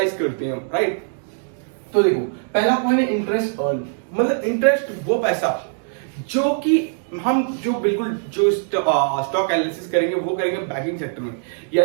करते हैं, राइट। तो देखो पहला पॉइंट है इंटरेस्ट अर्न, मतलब इंटरेस्ट वो पैसा जो कि हम जो स्टॉक एनालिसिस करेंगे वो करेंगे बैंकिंग सेक्टर में,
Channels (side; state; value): left; silent; digital silence